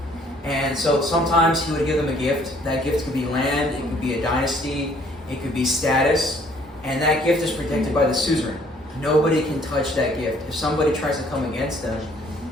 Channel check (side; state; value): both; normal; correlation 0.60